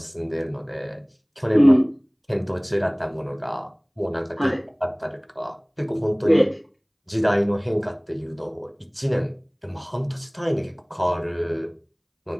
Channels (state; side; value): identical; both; correlation 1.00